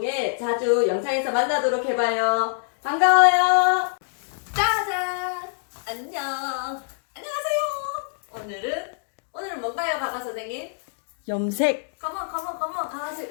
자주 영상에서 만나도록 해봐요. 반가워요. 짜잔. 안녕. 안녕하세요. 오늘은 뭔가요, 가가 선생님? 염색. 컴온 가가씨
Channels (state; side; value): silent; right; digital silence